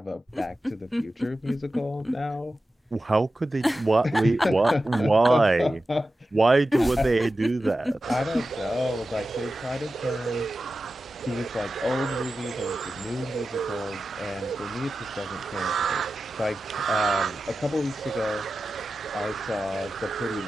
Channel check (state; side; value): normal; both; correlation 0.93